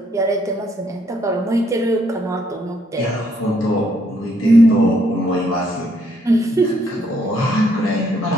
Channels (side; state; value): both; normal; correlation 0.70